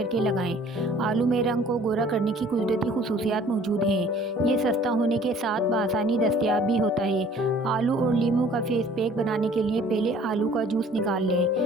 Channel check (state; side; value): normal; both; correlation 0.53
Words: लगाएं। आलू में रंग को गोरा करने की कुदरती खुसूसियात मौजूद हैं। ये सस्ता होने के साथ बआसानी दस्तयाब भी होता है। आलू और नींबू का फेस पैक बनाने के लिए पहले आलू का जूस निकाल